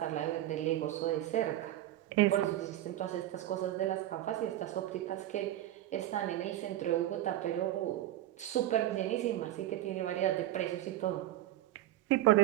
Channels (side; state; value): left; quieter; 13.8 dB